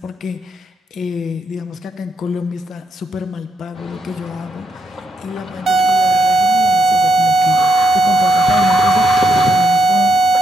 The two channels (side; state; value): both; normal; correlation 0.78